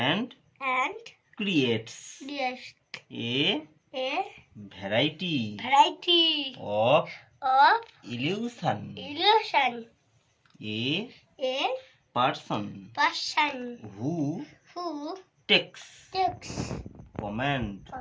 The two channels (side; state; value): both; identical; correlation 1.00